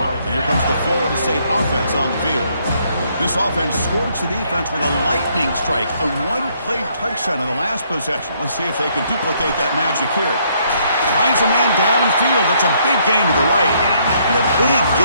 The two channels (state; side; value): inverted; both; correlation -0.69